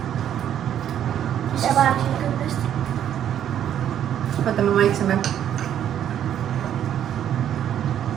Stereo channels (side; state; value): left; quieter; 10.2 dB